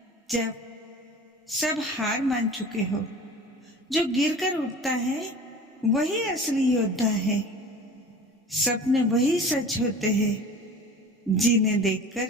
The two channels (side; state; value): both; normal; correlation 0.40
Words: जब सब हार मान चुके हो। जो गिरकर उठता है वही असली योद्धा है। सपने वही सच होते हैं जीने देखकर